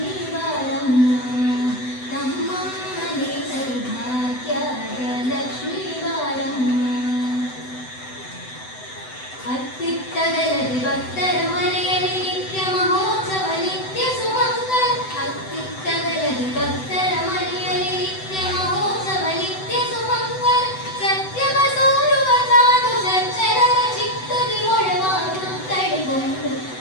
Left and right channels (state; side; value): late; right; 7.9 ms